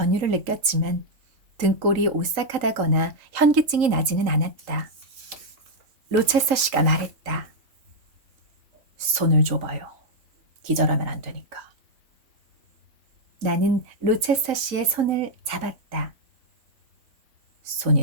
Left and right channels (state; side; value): late; left; 3.8 ms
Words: 느꼈지만 등골이 오싹하다거나 현기증이 나지는 않았다. 로체서 씨가 말했다. 손을 줘봐요. 기절하면 안 되니까. 나는 로체서 씨의 손을 잡았다.